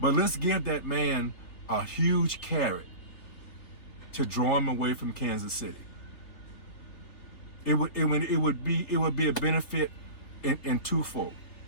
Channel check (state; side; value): late; right; 3.4 ms